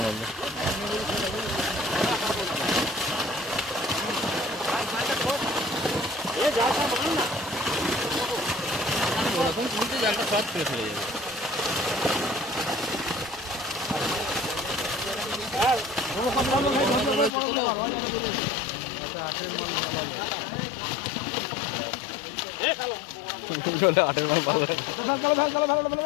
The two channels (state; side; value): drops out; right; at 17.3 s